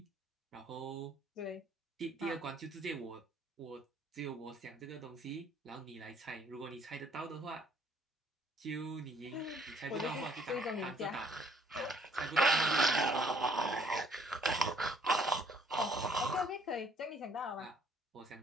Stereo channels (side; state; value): both; normal; correlation 0.63